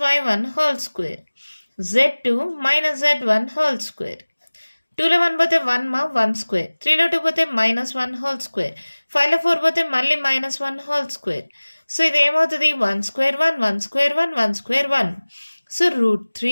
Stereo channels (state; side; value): inverted; both; correlation -1.00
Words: y1 whole square, z2 - z1 whole square. 2లో 1 పోతే 1 మా 1 స్క్వేర్, 3లో 2 పోతే -1 హోల్ స్క్వేర్, 5లో 4 పోతే మళ్ళీ -1 హోల్ స్క్వేర్. సో ఇది ఏమవుతుంది? 1 స్క్వేర్ 1 1 స్క్వేర్ 1 1 స్క్వేర్ 1. సో